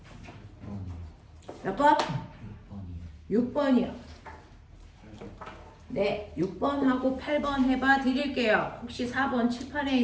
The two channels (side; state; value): both; identical; correlation 1.00